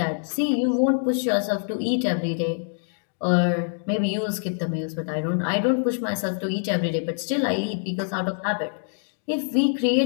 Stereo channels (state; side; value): silent; right; digital silence